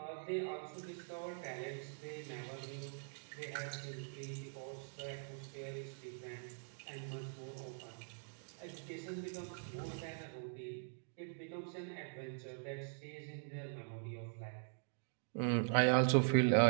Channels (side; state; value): left; silent; digital silence